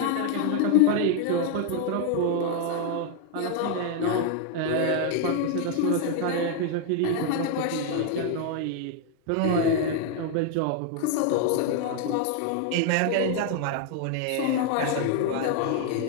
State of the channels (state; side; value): different; both; correlation 0.01